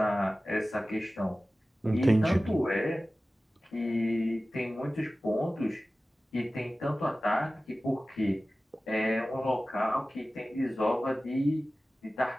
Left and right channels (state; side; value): normal; both; correlation 0.96